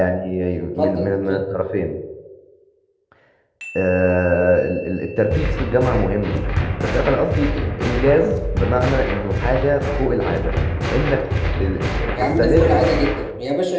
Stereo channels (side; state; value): both; identical; correlation 1.00